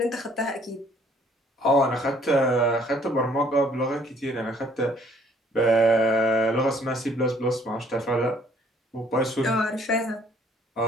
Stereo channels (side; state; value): both; normal; correlation 0.61